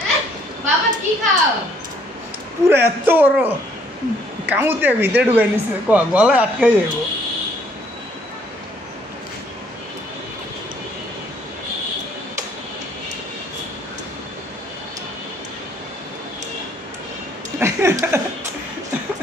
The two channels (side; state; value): both; normal; correlation 0.64